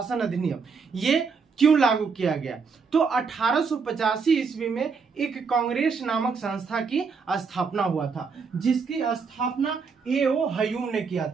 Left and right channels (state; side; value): quieter; left; 5.3 dB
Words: अधिनियम ये क्यों लागू किया गया। तो 1885 ईस्वी में एक कांग्रेस नामक संस्था की स्थापना हुआ था, जिसकी स्थापना ए.ओ. हयूम ने किया